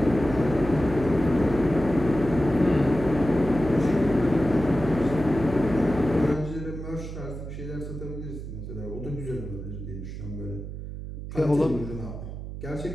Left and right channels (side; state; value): right; noise; hum, 9 dB below the sound